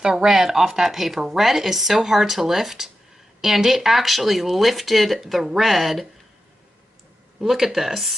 red off that paper. Red is so hard to lift, and it actually lifted the red. Look at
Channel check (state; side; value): normal; both; correlation 0.91